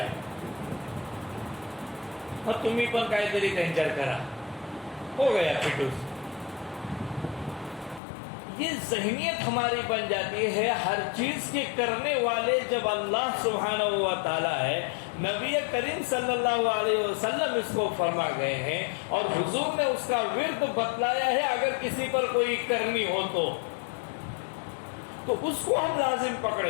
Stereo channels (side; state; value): right; drops out; at 8.0 s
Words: اور تمہیں پر کائتری کنچر کرا ہو گیا پھٹوس۔ یہ ذہنیت ہماری بن جاتی ہے ہر چیز کے کرنے والے جب اللہ سبحانہ و تعالیٰ ہے، نبی کریم صلی اللہ علیہ وسلم اس کو فرما گئے ہیں اور حضور نے اس کا ورد بتلایا ہے، اگر کسی پر کوئی کرنی ہو تو اس کو ہم لازم